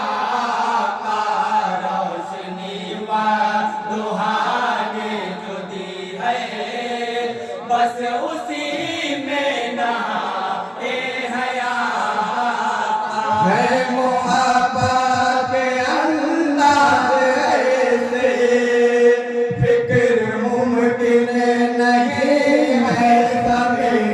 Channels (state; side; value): identical; both; correlation 1.00